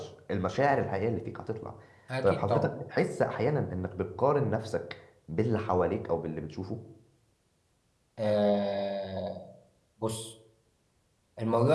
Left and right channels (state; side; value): identical; both; correlation 1.00